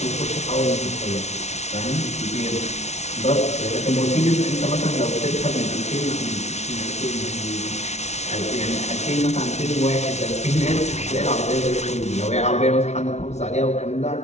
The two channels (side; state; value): right; late; 0.32 ms